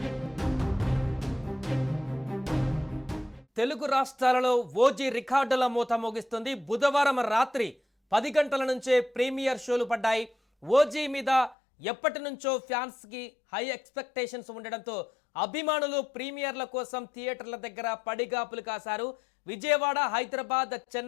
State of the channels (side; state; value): right; drops out; at 11.6 s